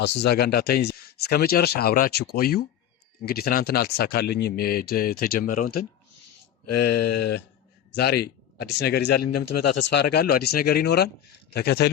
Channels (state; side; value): quieter; right; 10.3 dB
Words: እዛ ጋር እንዳታየኝ እስከመጨረሻ አብራችሁ ቆዩ እንግዲህ ትናንትና አልተሳካልኝም የተጀመረው እንትን ዛሬ አዲስ ነገር ይዛልኝ እንደምትመጣ ተስፋ አደርጋለሁ አዲስ ነገር ይኖራል